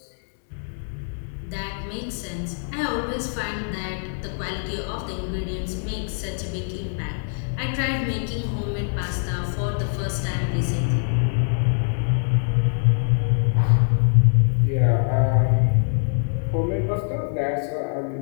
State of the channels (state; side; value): silent; right; digital silence